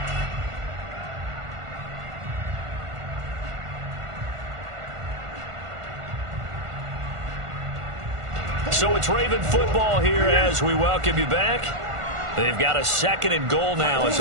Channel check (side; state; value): left; late; 1.5 ms